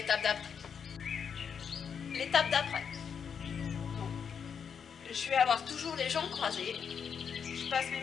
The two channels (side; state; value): right; quieter; 7.0 dB